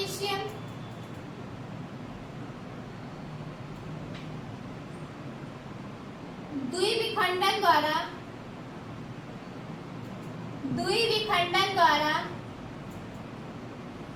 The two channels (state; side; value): identical; both; correlation 1.00